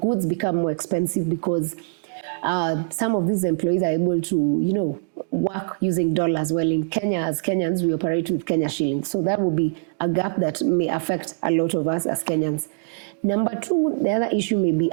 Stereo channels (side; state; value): left; silent; digital silence